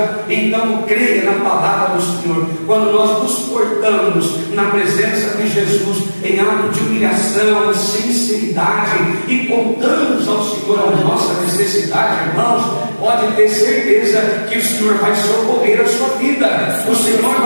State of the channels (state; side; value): inverted; both; correlation -1.00